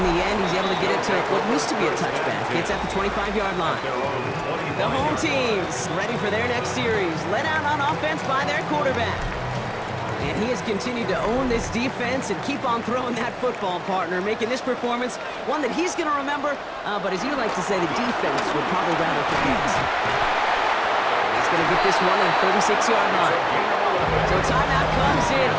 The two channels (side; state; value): both; identical; correlation 1.00